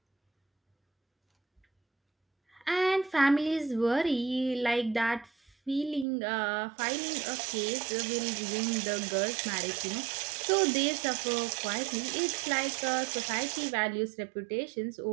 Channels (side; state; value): left; drops out; at 6.1 s